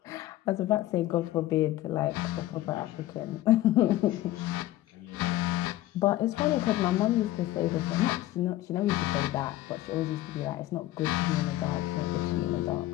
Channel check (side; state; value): right; quieter; 15.3 dB